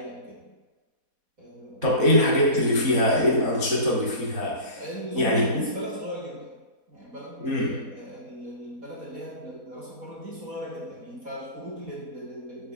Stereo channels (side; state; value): left; late; 4.1 ms